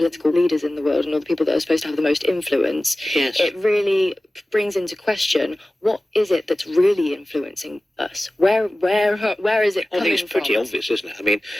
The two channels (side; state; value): both; normal; correlation 0.96